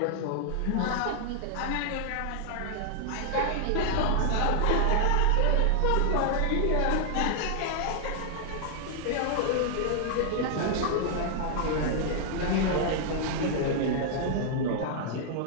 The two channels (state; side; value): different; both; correlation 0.00